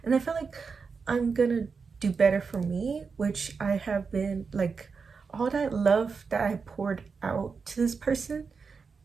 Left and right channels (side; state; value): left; quieter; 5.2 dB